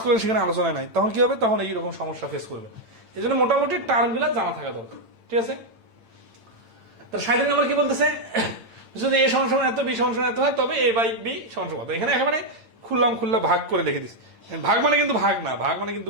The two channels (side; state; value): left; late; 8.9 ms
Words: করলেন সেখানে আলোচনায় নাই, তখন কি হবে? তখন এইরকম সমস্যা ফেস করবে। এই জন্য মোটামুটি টার্মগুলো জানা থাকা দরকার, ঠিক আছে? তার 37 নম্বর কি বলতেছে, যদি এ সমান এত, বি সমান এত হয় তবে এ বাই বি সমান কত। এখানে একেবারে খুল্লা ভাগ করে লিখে দিচ্ছে। ভাগ মানে কিন্তু ভাগ না, ভাগ মানে